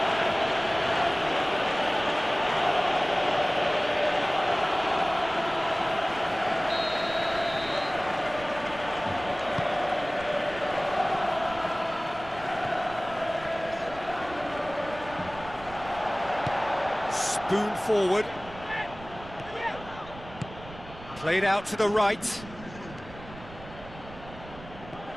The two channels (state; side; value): noise; right; rumble, 17 dB below the sound